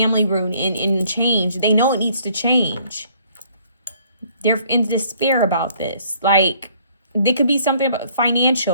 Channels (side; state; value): both; inverted; correlation -0.61